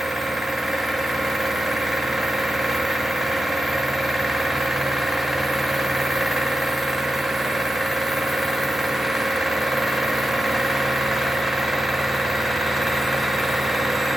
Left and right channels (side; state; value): both; normal; correlation 0.90